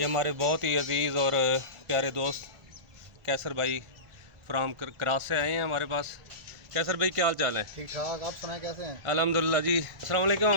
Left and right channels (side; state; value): left; late; 1.4 ms